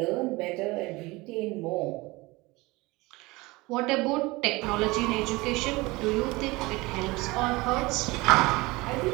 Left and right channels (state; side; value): quieter; left; 22.4 dB